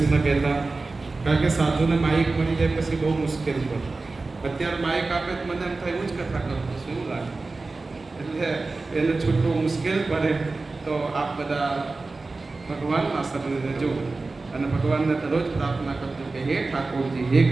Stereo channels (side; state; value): left; quieter; 3.6 dB